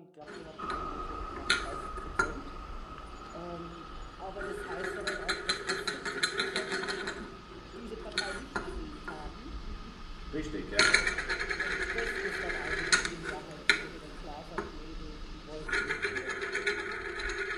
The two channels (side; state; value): both; identical; correlation 1.00